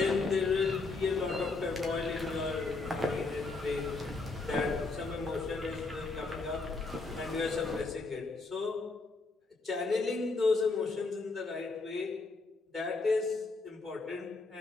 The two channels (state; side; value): quieter; right; 3.7 dB